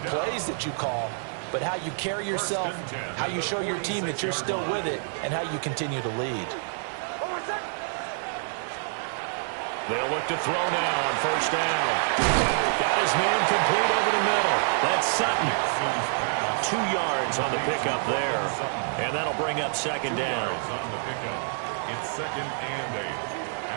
plays that you call, but how you carry yourself, how you show your team that you're still with it, and how you continue to lead. They'll look to throw now on 1st down. Got his man complete over the middle. That's Sutton. 2 yards on the pickup there. And that'll bring up 2nd down. On the pickup. It's 2nd and 8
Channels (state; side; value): silent; left; 59 dB below the other